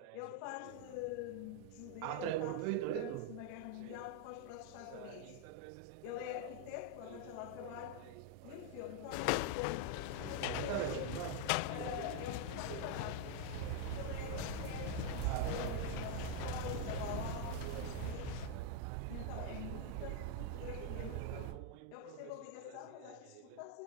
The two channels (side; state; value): both; different; correlation 0.01